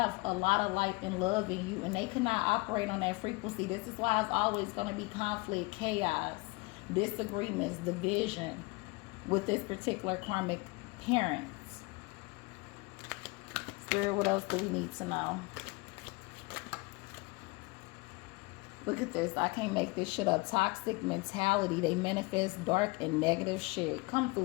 a lot of light and love in you, and they cannot operate on that frequency. This is why it's always going to be conflict, chaos, disagreements, division with this particular karmic parents. Spirit, what else do we need to know? Look at this. I can't make this shit up. Toxic mentality. They manifest dark and negative shit. Come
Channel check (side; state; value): right; quieter; 25.8 dB